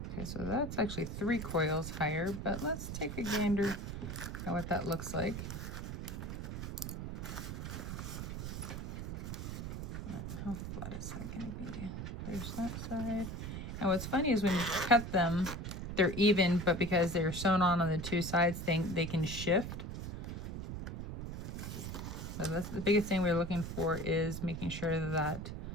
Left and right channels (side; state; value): right; noise; rumble, 6 dB below the sound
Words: Okay, so that's actually 3 coils higher, but let's take a gander at what that looks like. How flat is that going to be? There's that side. And what's funny is when you cut them, they're even, but because they're sewn on the 2 sides, they can shift. So that's the biggest thing we're looking for, is making sure that